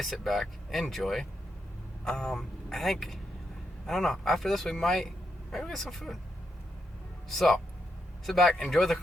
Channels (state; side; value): normal; both; correlation 0.82